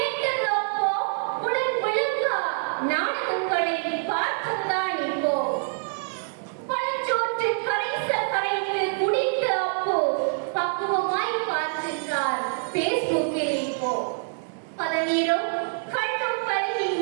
அப்போ. உடன் விளக்கா நாடகங்களை பார்ப்பதுதான் இப்போ. பழச்சோற்று கரைந்து குடித்த அப்போ பக்குவமாய் பார்க்கின்றார் பேஸ்புக்கில் இப்போ. பதநீரும் கண்ணும் பருகி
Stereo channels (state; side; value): silent; left; digital silence